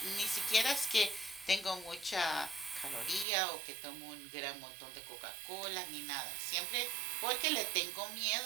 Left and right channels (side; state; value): left; drops out; at 3.2 s